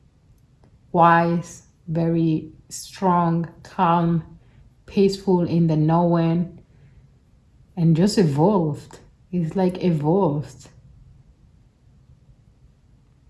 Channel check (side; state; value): both; identical; correlation 1.00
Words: wise, very strong, calm, peaceful in the knowing, and just evolved. It's like evolved.